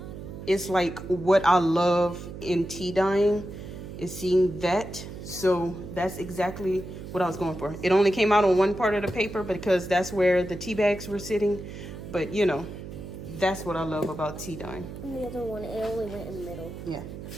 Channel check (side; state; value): right; noise; hum, 11 dB below the sound